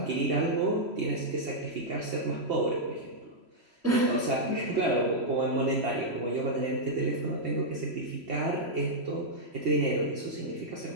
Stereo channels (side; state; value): left; late; 3.0 ms